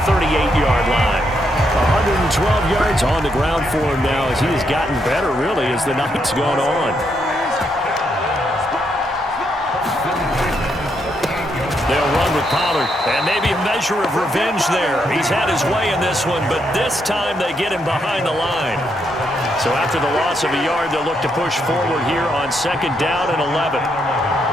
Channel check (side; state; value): both; normal; correlation 0.78